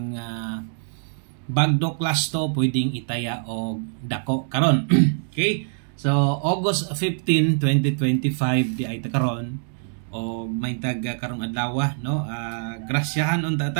bagdo klasto pwedeng itaya og dako karon. Okay? So August 15, 2025 di ay ta karon og may tag karong adlaw, no, grasyahan unta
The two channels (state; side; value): silent; left; digital silence